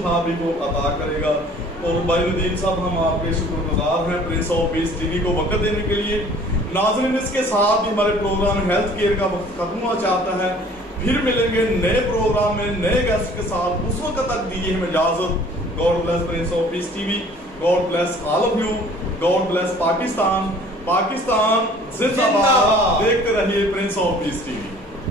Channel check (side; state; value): both; normal; correlation 0.52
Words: بھی وہ عطا کرے گا۔ اور بھائی ندیم صاحب ہم آپ کے شکر گزار ہیں prince of peace T V کو وقت دینے کے لیے۔ ناظرین اس کے ساتھ ہی ہمارے پروگرام ہیلتھ کیئر کا وقت ختم ہوا چاہتا ہے، پھر ملیں گے نئے پروگرام میں نئے گیسٹ کے ساتھ، اس وقت تک دیجیے ہمیں اجازت۔ God bless prince of peace T V, God bless all of you, God bless Pakistan, Pakistan زندہ باد۔ دیکھتے رہیے prince of peace T V.